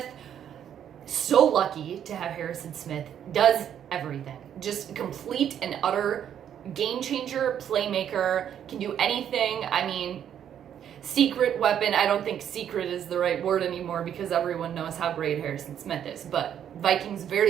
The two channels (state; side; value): quieter; left; 9.5 dB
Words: so lucky to have Harrison Smith, does everything. Just complete and utter game changer, playmaker, can do anything. I mean, secret weapon. I don't think secret is the right word anymore because everyone knows how great Harrison Smith is. But Vikings